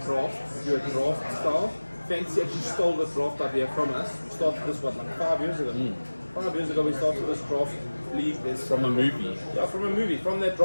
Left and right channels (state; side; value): inverted; both; correlation -1.00